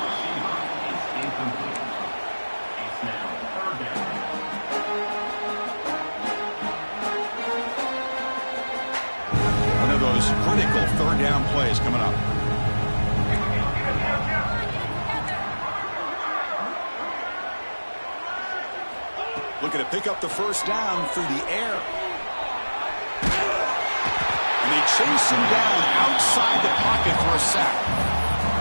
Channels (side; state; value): both; inverted; correlation -1.00